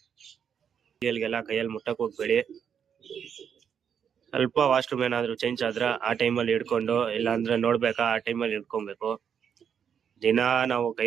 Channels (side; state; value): left; quieter; 7.8 dB